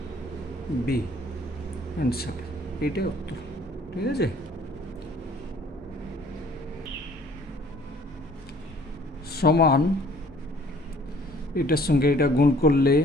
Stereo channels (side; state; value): both; normal; correlation 0.55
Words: বি, অ্যান্সার। এইটাই উত্তর, ঠিক আছে। সমান এটার সঙ্গে এটা গুণ করলে